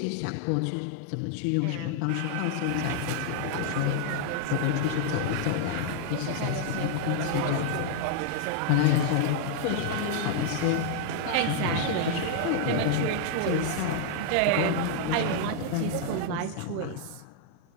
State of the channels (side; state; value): both; different; correlation -0.01